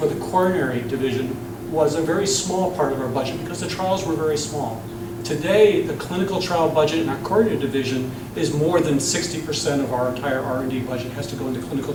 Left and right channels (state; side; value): identical; both; correlation 1.00